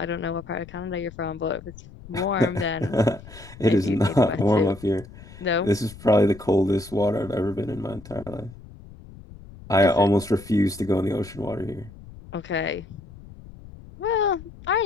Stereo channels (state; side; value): noise; left; rumble, 18 dB below the sound